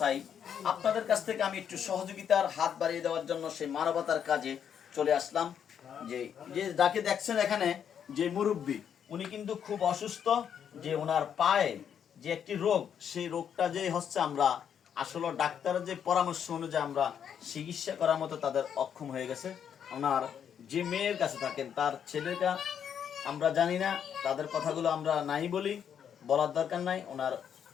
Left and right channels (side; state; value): right; quieter; 8.4 dB